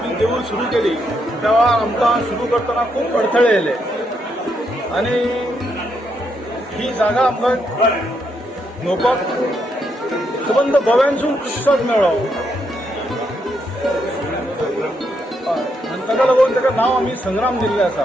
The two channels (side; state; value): both; normal; correlation 0.78